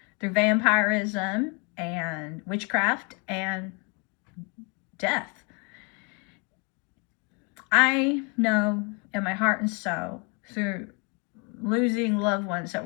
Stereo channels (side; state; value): right; quieter; 33.6 dB